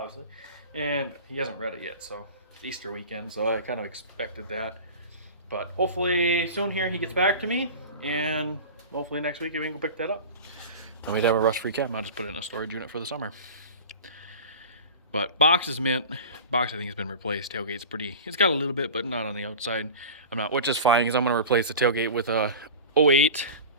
and he hasn't read it yet. So it's Easter weekend, so I kind of expected that. But hopefully soon here he gets back to me, and hopefully next week we can go pick that up. And we'd have a rust-free cab. I'll just put it in a storage unit for the summer. But box is mint. Box I think has been replaced. Tailgate's pretty. It's got a little bit, but not on the outside. I'm not, which is fine because I'm gonna replace the tailgate with a 08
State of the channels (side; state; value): both; inverted; correlation -0.34